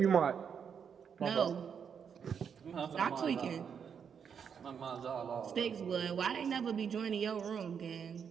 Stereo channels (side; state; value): left; quieter; 7.2 dB